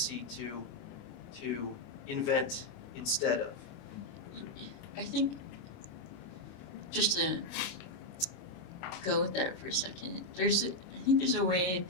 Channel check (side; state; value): right; late; 29 ms